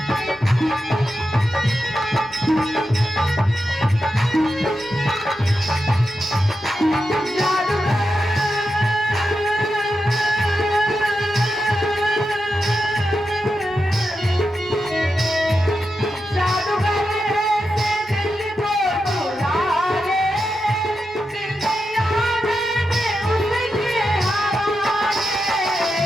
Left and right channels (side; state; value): both; normal; correlation 0.88